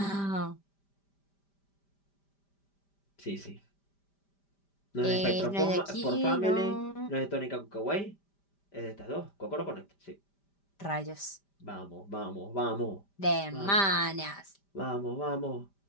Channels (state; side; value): late; right; 5.1 ms